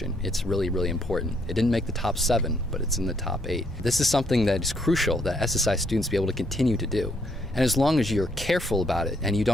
It's really, really important. It didn't make the top 7, but it's in the top 8. This is something that is crucial that SSI students be able to continue to do. And as long as you're careful about it and you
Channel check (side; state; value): both; normal; correlation 0.71